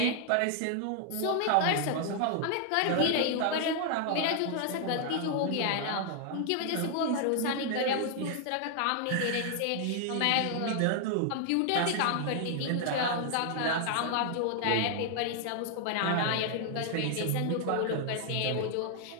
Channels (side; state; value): both; different; correlation 0.00